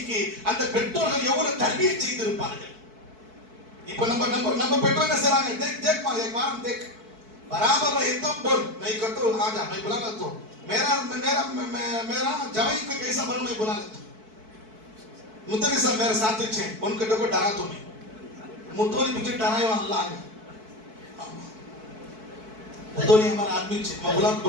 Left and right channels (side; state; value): left; late; 4.6 ms